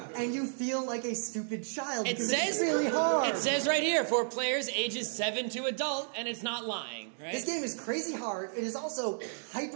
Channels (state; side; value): silent; left; digital silence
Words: and you feel like a stupid child because it's really hard. It says right here, for players ages 7 to adult, and it's not lying, right? This game is crazy hard. It is also